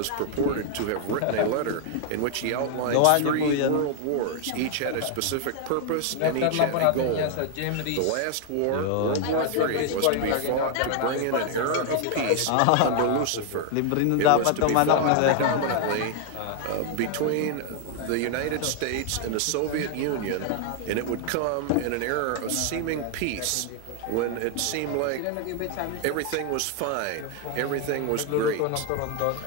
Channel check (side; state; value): both; different; correlation 0.00